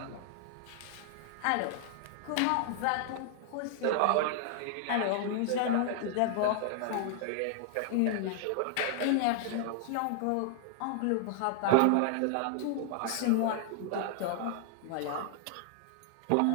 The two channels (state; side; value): different; both; correlation 0.00